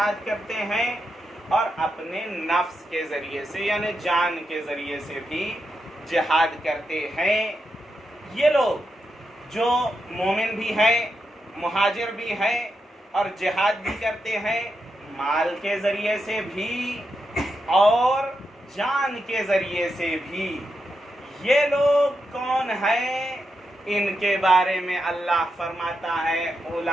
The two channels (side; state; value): both; normal; correlation 0.85